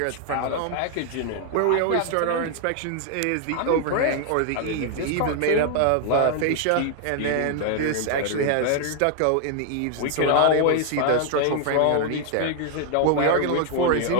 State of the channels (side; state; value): both; different; correlation 0.00